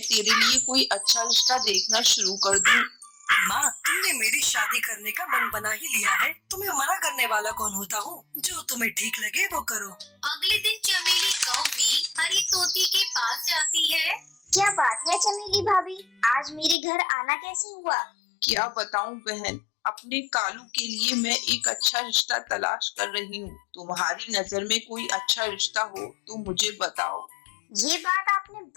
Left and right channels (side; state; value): right; drops out; at 16.8 s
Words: तेरे लिए कोई अच्छा रिश्ता देखना शुरू कर दूँ। माँ, तुमने मेरी शादी करने का मन बना ही लिया है। तुम्हें मना करने वाला कौन होता हूँ? जो तुम्हें ठीक लगे वो करो। अगले दिन चमेली कौवी हरी तोती के पास जाती है। क्या बात है चमेली भाभी, आज मेरे घर आना कैसे हुआ? क्या बताऊं बहन, अपने कालू के लिए मैं एक अच्छा रिश्ता तलाश कर रही हूँ। तुम्हारी नजर में कोई अच्छा रिश्ता हो तो मुझे बताओ। ये बात आपने